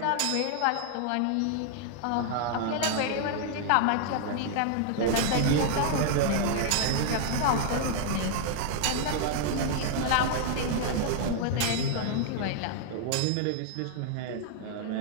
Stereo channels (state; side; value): different; both; correlation 0.00